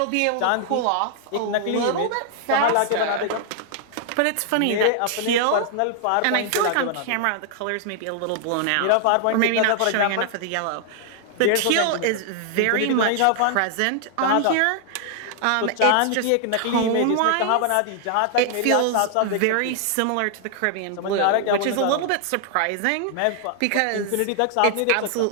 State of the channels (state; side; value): different; both; correlation 0.00